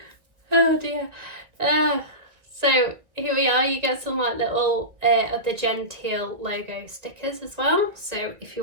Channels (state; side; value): late; left; 1.9 ms